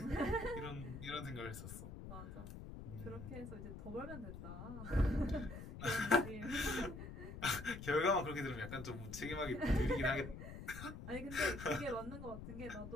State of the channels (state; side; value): noise; left; rumble, 10 dB below the sound